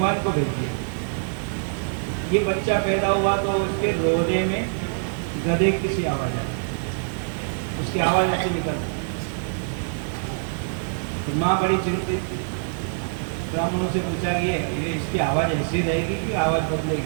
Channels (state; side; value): silent; left; 62 dB below the other